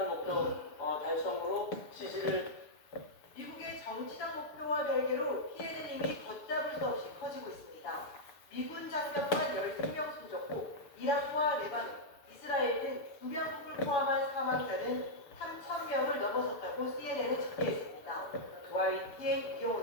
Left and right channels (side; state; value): right; late; 6.9 ms